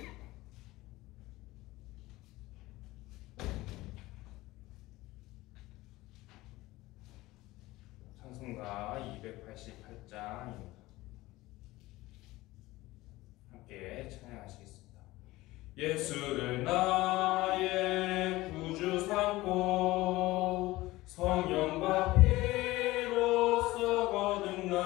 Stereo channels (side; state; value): right; quieter; 18.8 dB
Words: 찬송가 288장입니다. 함께 찬양하시겠습니다. 예수를 나의 구주 삼고 성령과 피로써